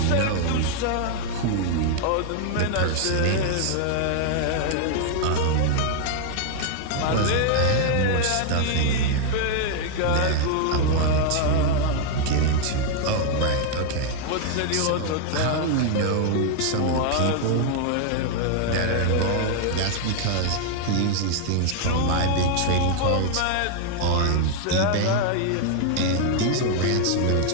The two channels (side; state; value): both; different; correlation 0.00